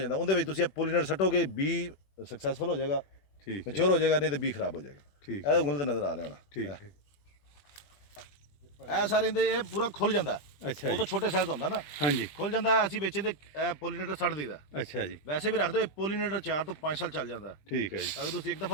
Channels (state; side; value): late; right; 20 ms